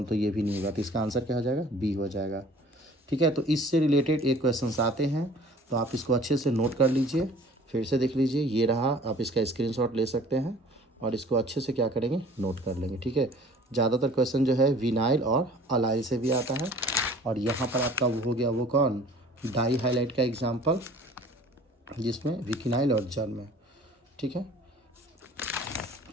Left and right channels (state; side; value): normal; both; correlation 0.49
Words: तो ये भी नहीं होगा। तो इसका आंसर क्या हो जाएगा? बी हो जाएगा। ठीक है, तो इससे रिलेटेड एक क्वेश्चन आते हैं, तो आप इसको अच्छे से नोट कर लीजिए, फिर से देख लीजिए। ये रहा, आप इसका स्क्रीनशॉट ले सकते हैं और इसको अच्छे से क्या करेंगे? नोट कर लेंगे। ठीक है, ज़्यादातर क्वेश्चन जो है विनाइल और अलाइल से भी आता है। और यहाँ पर आपका वो हो गया, वो कौन? डाई हाइलाइट का एग्जाम्पल, जिसमें विकिनाइल और जर्म। ठीक है,